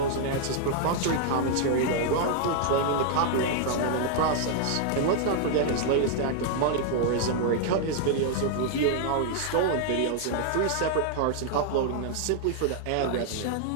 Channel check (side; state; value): both; different; correlation -0.01